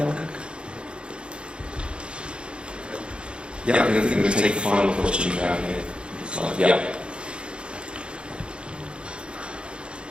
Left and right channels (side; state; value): left; late; 0.055 ms